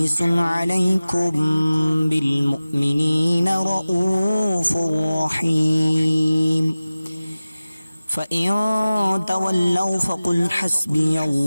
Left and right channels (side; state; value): both; inverted; correlation -0.97